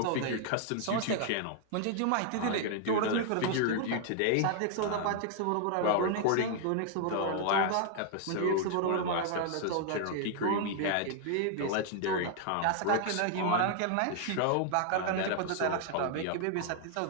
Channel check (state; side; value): different; both; correlation 0.00